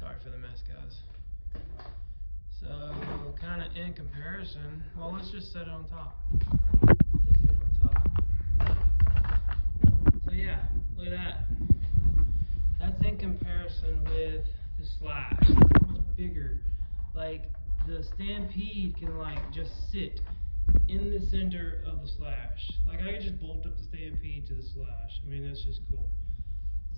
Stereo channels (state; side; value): inverted; both; correlation -1.00